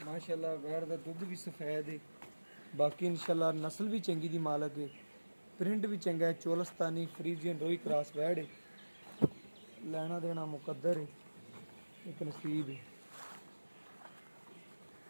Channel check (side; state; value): both; inverted; correlation -1.00